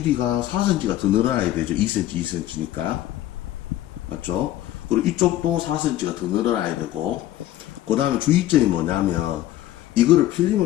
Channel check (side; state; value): right; quieter; 13.9 dB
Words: 4cm가 더 늘어나야 되죠. 2cm니까. 맞죠? 그리고 이쪽도 4cm가 더 늘어나야 되고, 그 다음에 주의점이 뭐냐면, 이거를